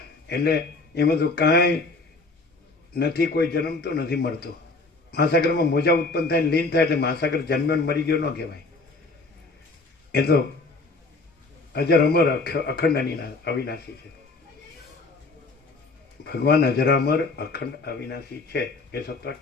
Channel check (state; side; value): quieter; right; 3.6 dB